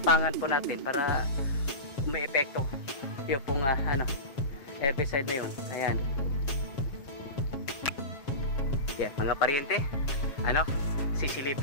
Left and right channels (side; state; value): right; late; 7.3 ms